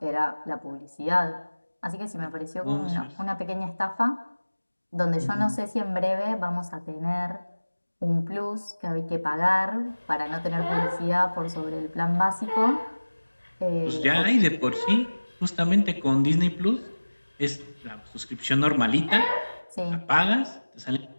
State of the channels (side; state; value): both; inverted; correlation -1.00